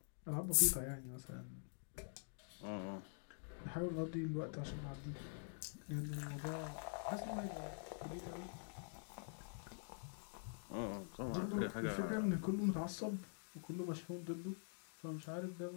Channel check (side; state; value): right; silent; digital silence